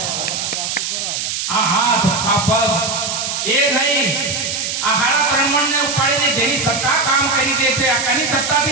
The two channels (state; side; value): noise; right; hiss, 3 dB below the sound